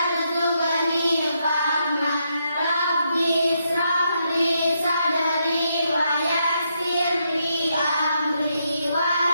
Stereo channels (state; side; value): inverted; both; correlation -0.79